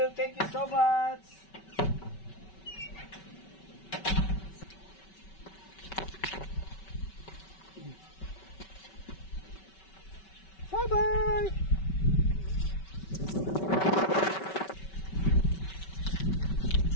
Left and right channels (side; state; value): right; late; 5.3 ms